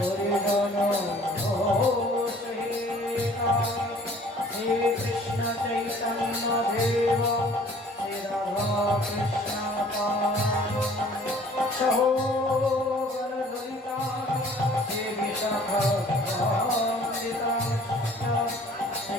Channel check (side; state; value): both; normal; correlation 0.53